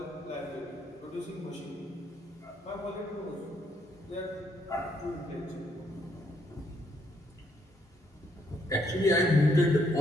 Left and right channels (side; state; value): both; normal; correlation 0.72